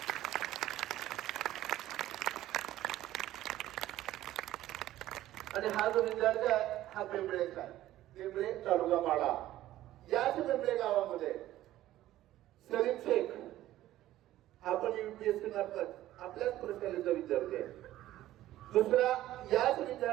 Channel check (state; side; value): quieter; left; 14.3 dB